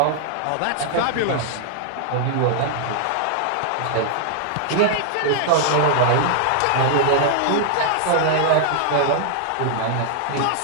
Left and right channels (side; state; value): both; different; correlation -0.01